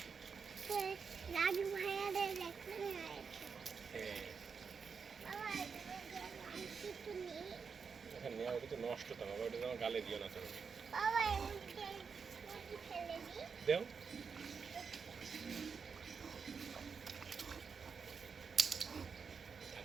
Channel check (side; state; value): left; quieter; 5.7 dB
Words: রাজু ভাইয়াদের দেখতে হয়েছে। বাবা কিছু নেই। এখানে নেওয়া ওটা তো নষ্ট তো বাবা, ওটা আমার গালে দিও না তুমি। বাবা এদিকে ফেলে দিই। দেও